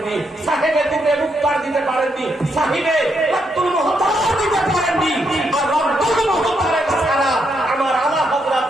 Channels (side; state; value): both; normal; correlation 0.79